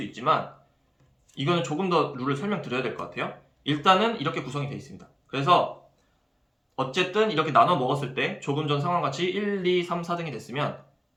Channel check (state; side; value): identical; both; correlation 1.00